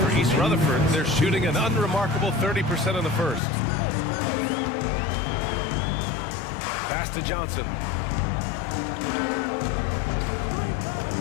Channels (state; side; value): drops out; right; at 3.4 s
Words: East Rutherford, they're shooting an unremarkable 30% in the first. Pass to Johnson.